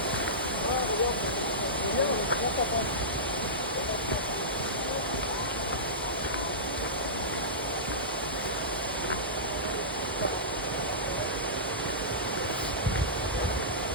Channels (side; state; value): both; normal; correlation -0.18